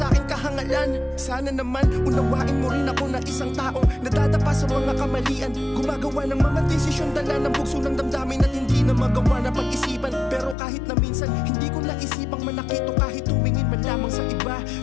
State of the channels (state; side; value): drops out; right; at 10.6 s